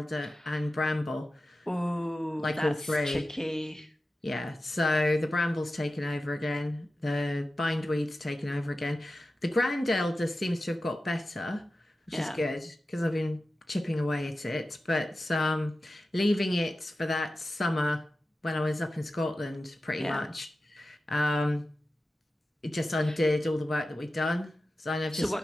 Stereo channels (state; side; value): normal; both; correlation 0.94